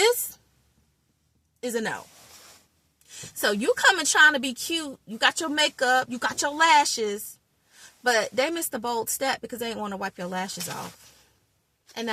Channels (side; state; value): both; identical; correlation 1.00